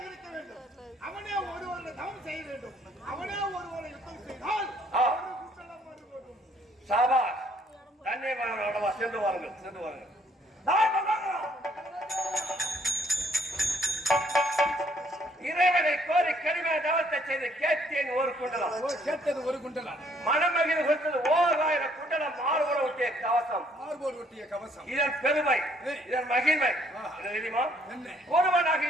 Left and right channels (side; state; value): both; normal; correlation 0.65